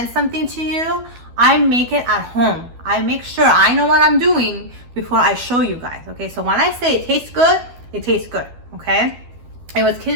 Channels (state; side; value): late; left; 12 ms